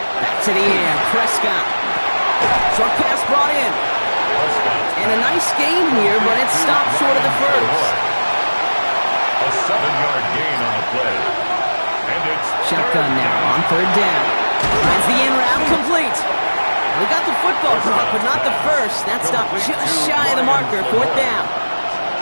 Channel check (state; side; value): inverted; both; correlation -1.00